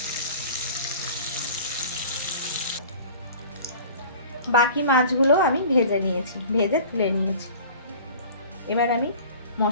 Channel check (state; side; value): inverted; both; correlation -0.43